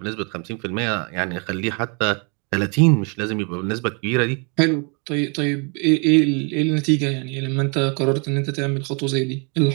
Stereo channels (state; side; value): quieter; left; 35.2 dB